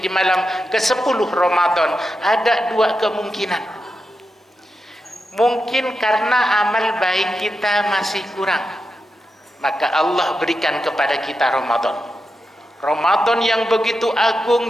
malam ke-10 Ramadan, ada dua kemungkinan. Mungkin karena amal baik kita masih kurang, maka Allah berikan kepada kita Ramadan. Ramadan yang begitu agung,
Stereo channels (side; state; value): both; normal; correlation 0.88